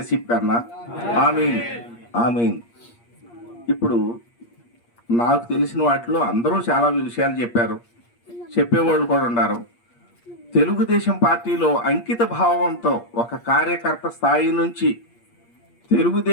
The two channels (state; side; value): late; right; 8.5 ms